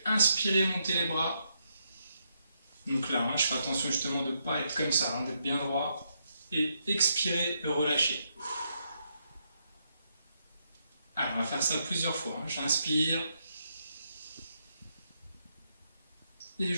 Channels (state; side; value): inverted; both; correlation -0.79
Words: inspirer, monter les bras. Donc là, je fais attention justement de ne pas être comme ça, d'être bien droit et expirer, relâcher. Alors, on va faire ça plusieurs fois. J'inspire et